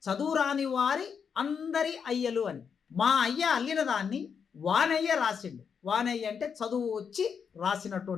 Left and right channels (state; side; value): quieter; right; 6.7 dB